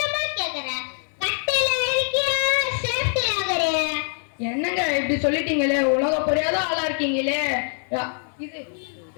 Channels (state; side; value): silent; right; 60 dB below the other